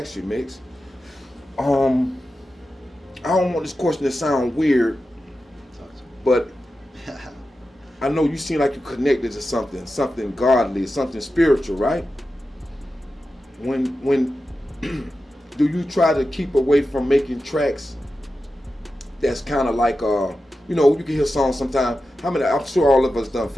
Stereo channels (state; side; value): normal; both; correlation 0.92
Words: you, Mix. I don't want this question to sound weird, but I know you seem like you're connected to something godly, something spiritual, right? When do you try to keep away from making tracks that's kind of like, you know, you can hear songs sometimes. I'm sure all of us done